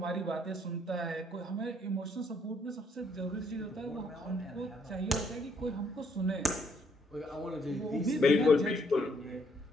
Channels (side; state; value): both; normal; correlation 0.69